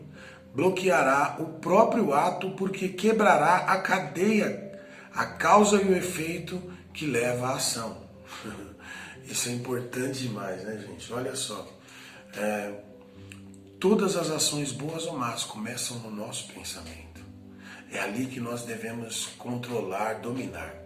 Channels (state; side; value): identical; both; correlation 1.00